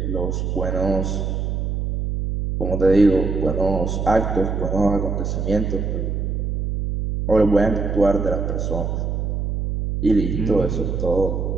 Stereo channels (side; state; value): right; noise; hum, 1 dB below the sound